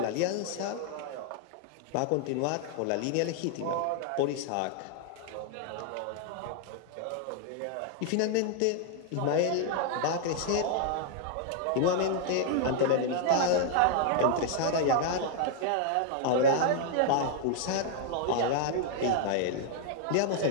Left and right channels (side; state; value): both; different; correlation 0.00